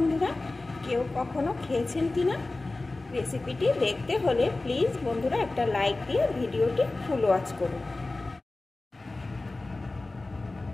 কেউ কখনো খেয়েছেন কিনা। রেসিপিটি দেখতে হলে প্লিজ বন্ধুরা একটা লাইক দিয়ে ভিডিওটি ফুল ওয়াচ করুন।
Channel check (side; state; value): right; quieter; 3.1 dB